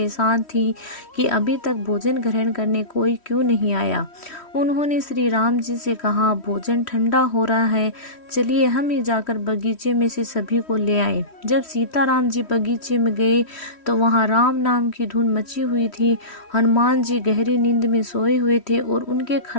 थी कि अभी तक भोजन ग्रहण करने कोई क्यों नहीं आया। उन्होंने श्री राम जी से कहा, भोजन ठंडा हो रहा है, चलिए हम ही जाकर बगीचे में से सभी को ले आए। जब सीताराम जी बगीचे में गए तो वहां राम नाम की धुन मची हुई थी। हनुमान जी गहरी नींद में सोए हुए थे और उनके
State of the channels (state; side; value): late; right; 3.1 ms